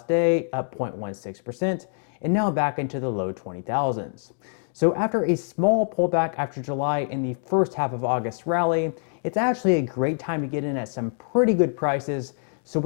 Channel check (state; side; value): silent; right; 62 dB below the other